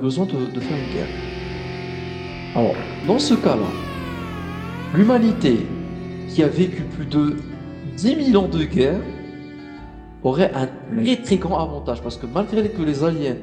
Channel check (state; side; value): identical; both; correlation 1.00